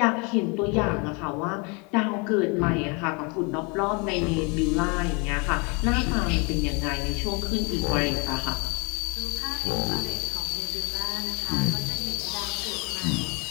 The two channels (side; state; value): right; quieter; 31.5 dB